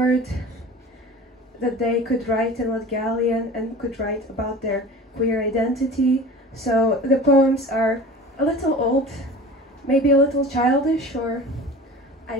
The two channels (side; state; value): both; normal; correlation 0.38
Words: that they could write in Latgalian and could write about their queer identity. So the poems are a little old, maybe a little childish, or I